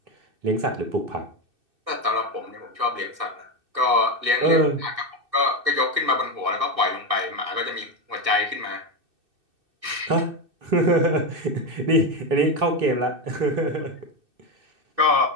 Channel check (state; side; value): late; left; 2.6 ms